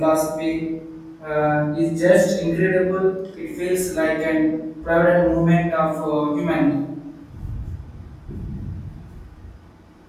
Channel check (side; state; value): both; identical; correlation 1.00